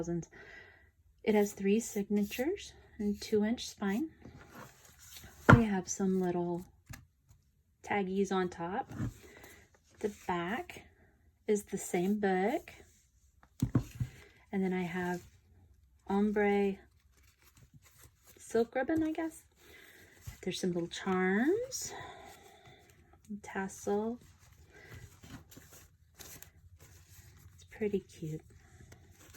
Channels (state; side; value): identical; both; correlation 1.00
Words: It has 3 signatures and 2-inch spine. We have some little taggies on top. The back is the same book. And then I have ombre silk ribbon, I guess. There's some little charms, tassel. It's pretty cute.